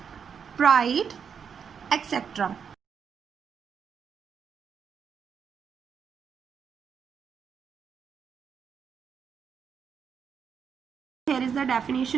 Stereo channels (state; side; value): quieter; left; 6.9 dB